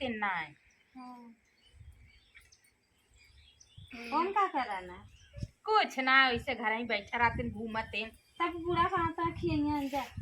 ना है। कौन का कराना कुछ ना ऐसे घर ही बैठा रहते घूमते तब बूढ़ा कहाँ तक खिया जा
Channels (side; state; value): both; identical; correlation 1.00